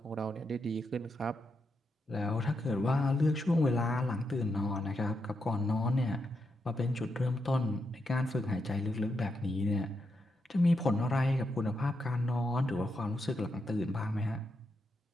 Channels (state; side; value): normal; both; correlation 0.83